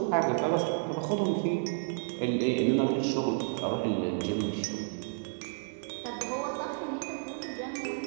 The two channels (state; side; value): silent; left; digital silence